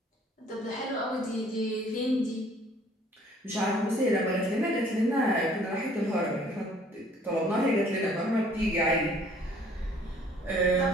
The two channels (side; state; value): both; normal; correlation 0.57